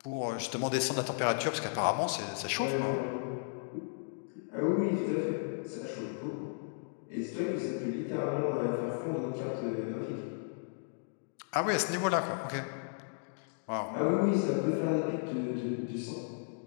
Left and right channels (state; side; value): silent; right; digital silence